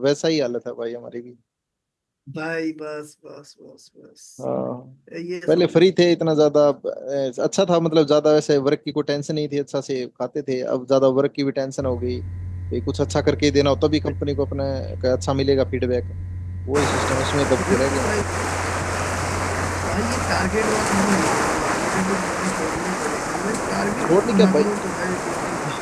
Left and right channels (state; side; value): identical; both; correlation 1.00